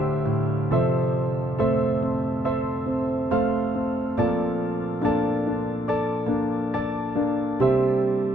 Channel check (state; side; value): noise; right; hum, 26 dB below the sound